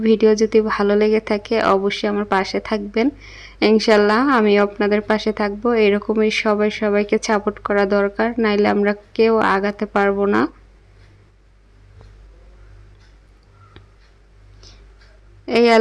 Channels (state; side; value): identical; both; correlation 1.00